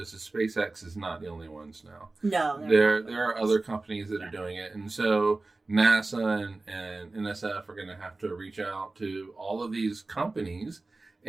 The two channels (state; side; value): quieter; left; 3.3 dB